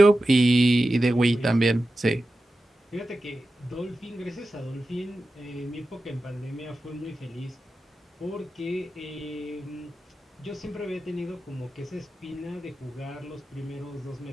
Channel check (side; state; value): both; normal; correlation 0.93